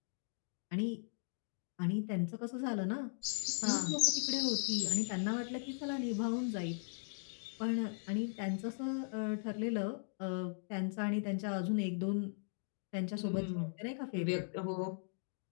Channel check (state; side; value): silent; right; digital silence